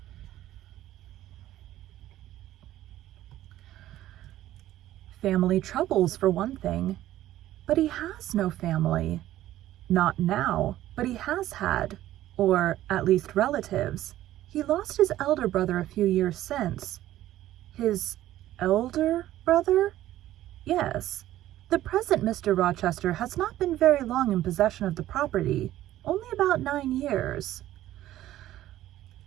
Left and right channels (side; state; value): left; quieter; 14.0 dB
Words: "Family troubles, for one thing." "But he has no family." "Not now, but he has had, or at least relatives. He lost his elder brother a few years since." "His elder brother?" "Yes. The present Mr. Rochester has not been very long in possession of the property, only about 9 years."